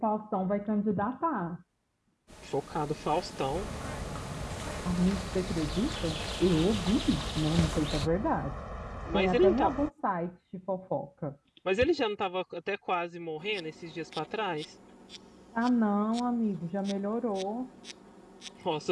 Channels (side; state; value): both; identical; correlation 1.00